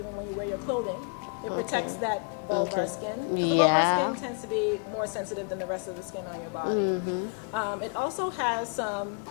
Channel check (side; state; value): right; quieter; 36.8 dB